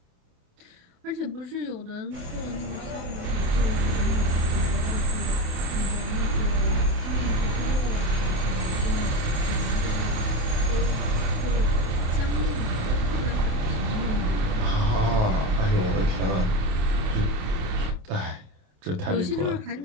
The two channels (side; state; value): left; late; 28 ms